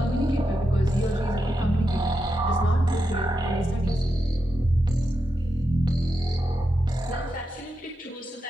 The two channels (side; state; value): both; normal; correlation 0.87